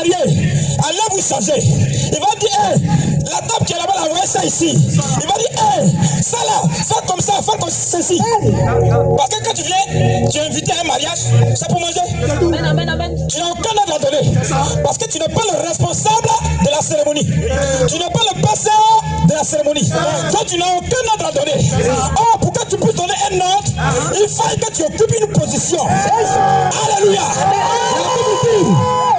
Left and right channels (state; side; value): identical; both; correlation 1.00